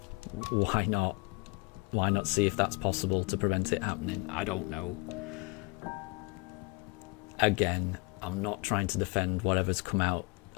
why not see if that's possible to prevent it happening? I don't know. Again, I'm not trying to defend whatever's come out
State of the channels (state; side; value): quieter; right; 28.6 dB